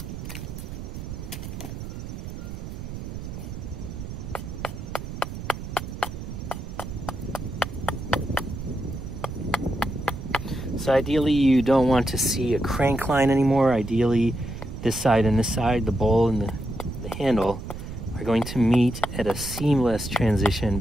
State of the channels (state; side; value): noise; right; rumble, 8 dB below the sound